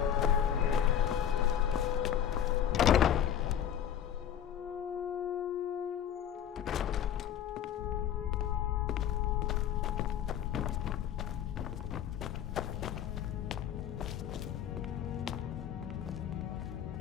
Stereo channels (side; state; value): right; quieter; 9.7 dB